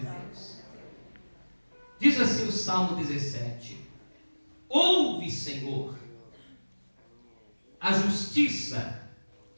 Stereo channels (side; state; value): both; inverted; correlation -1.00